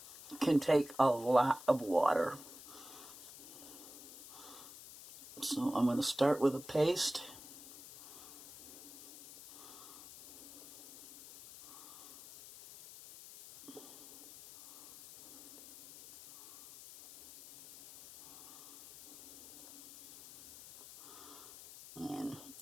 can take a lot of water. So I'm going to start with a paste. And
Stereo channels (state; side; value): noise; left; hiss, 16 dB below the sound